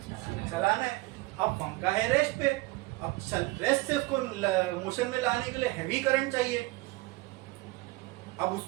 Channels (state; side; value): quieter; left; 21.8 dB